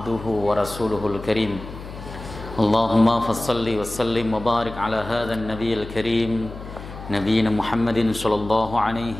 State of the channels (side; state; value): left; noise; hum, 13 dB below the sound